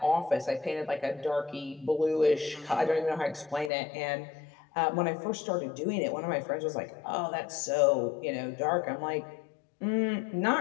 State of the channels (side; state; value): right; drops out; at 3.7 s